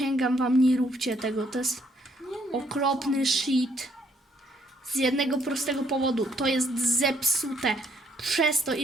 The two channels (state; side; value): normal; both; correlation 0.69